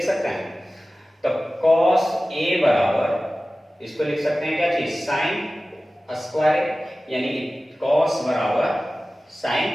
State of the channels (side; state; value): both; normal; correlation 0.96